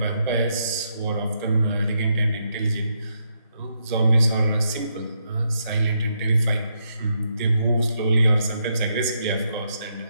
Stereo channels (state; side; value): inverted; both; correlation -0.79